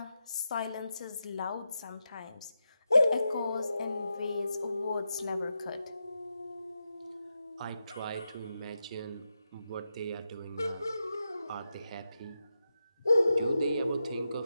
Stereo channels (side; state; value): both; inverted; correlation -0.88